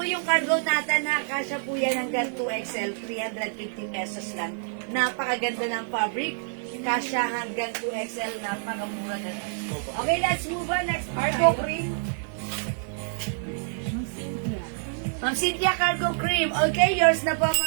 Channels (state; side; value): silent; left; digital silence